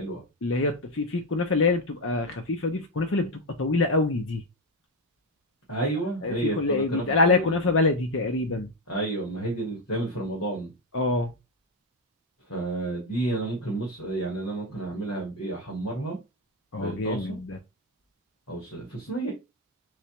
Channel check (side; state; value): both; normal; correlation 0.08